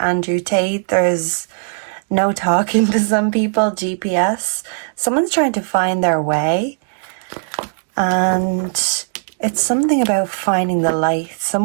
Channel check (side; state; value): left; silent; digital silence